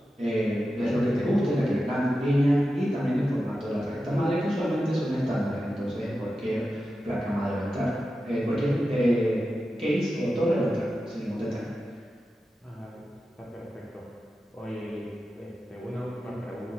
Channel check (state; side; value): normal; both; correlation 0.91